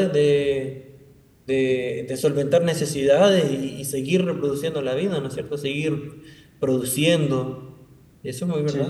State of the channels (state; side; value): identical; both; correlation 1.00